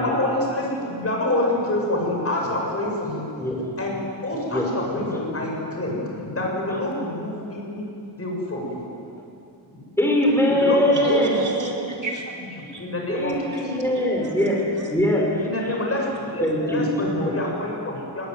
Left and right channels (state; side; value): normal; both; correlation 0.17